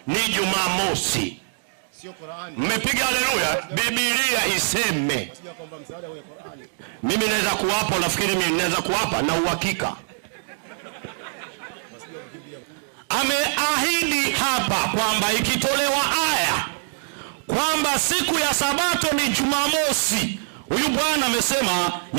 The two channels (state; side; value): silent; left; digital silence